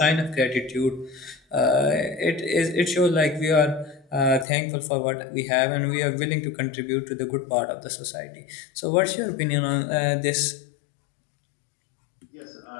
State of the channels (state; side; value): drops out; right; at 4.5 s